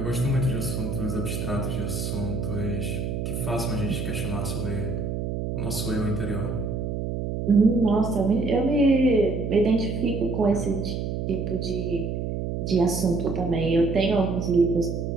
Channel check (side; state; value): right; noise; hum, 3 dB below the sound